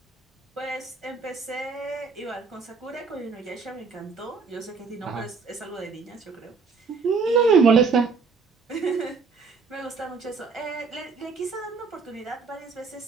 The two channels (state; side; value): quieter; left; 4.8 dB